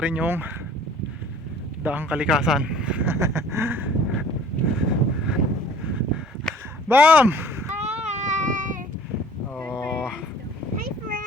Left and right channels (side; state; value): both; normal; correlation 0.50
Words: rin yung daang kalikasan. Bam! Hi! Oh. Hi,